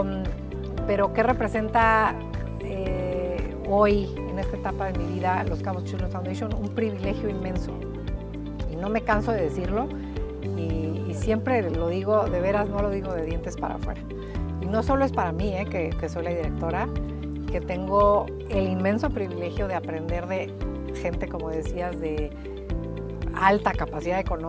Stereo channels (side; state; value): both; identical; correlation 1.00